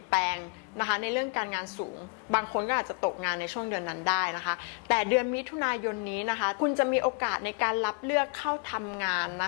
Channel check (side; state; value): right; quieter; 36.6 dB